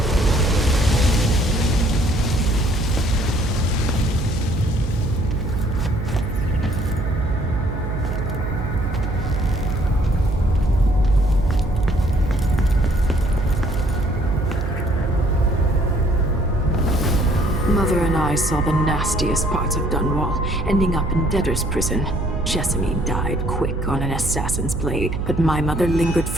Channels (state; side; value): noise; right; hum, 4 dB below the sound